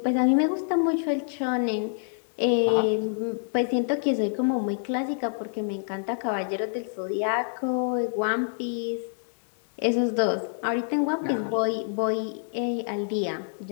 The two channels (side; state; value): right; silent; digital silence